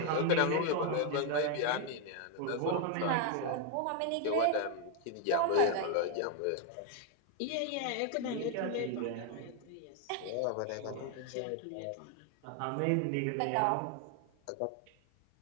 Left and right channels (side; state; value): both; different; correlation 0.00